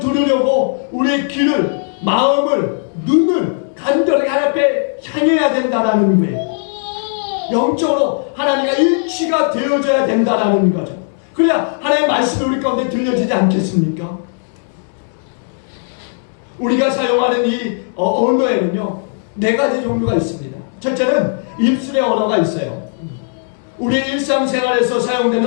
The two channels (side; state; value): right; silent; digital silence